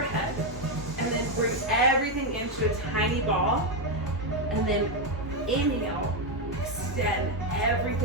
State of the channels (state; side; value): normal; both; correlation 0.05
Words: And then bring everything into a tiny ball. And then inhale, extend